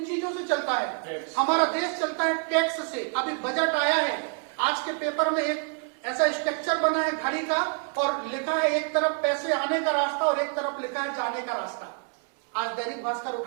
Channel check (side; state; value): left; quieter; 39.5 dB